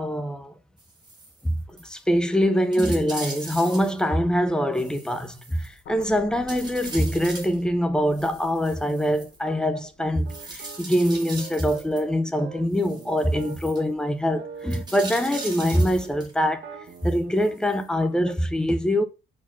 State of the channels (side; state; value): both; normal; correlation 0.88